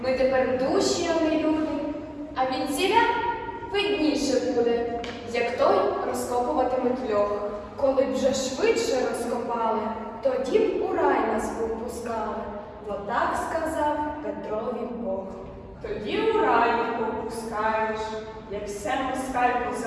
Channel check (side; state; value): both; identical; correlation 1.00